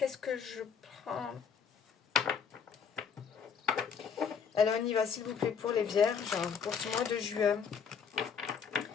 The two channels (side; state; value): right; quieter; 6.6 dB